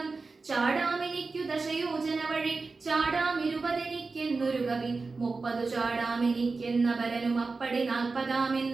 ചാടാമെനിക്കു ദശയോജന വഴി, ചാടാമിരുപതെനിക്കെന്നൊരു കവി. 30 ചാടാമെനിക്കെന്ന പരനും അപ്പടി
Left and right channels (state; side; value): quieter; left; 4.0 dB